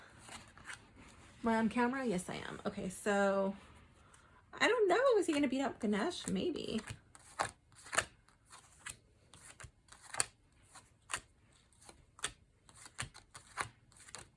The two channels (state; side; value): identical; both; correlation 1.00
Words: Am I on camera? Yes, I am. Okay, so I don't know. Is he going to beat up Ganesh? Maybe.